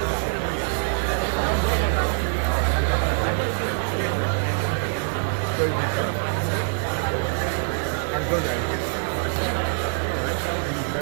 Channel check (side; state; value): left; silent; 56 dB below the other